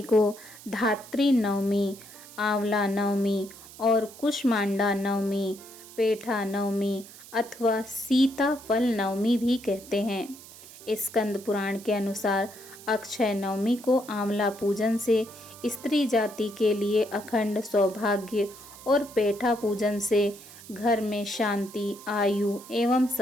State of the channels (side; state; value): right; noise; hiss, 18 dB below the sound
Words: को धात्री नवमी, आंवला नवमी और कुष्मांडा नवमी, पेठा नवमी अथवा सीता फल नवमी भी कहते हैं। स्कंद पुराण के अनुसार अक्षय नवमी को आंवला पूजन से स्त्री जाति के लिए अखंड सौभाग्य और पेठा पूजन से घर में शांति, आयु एवं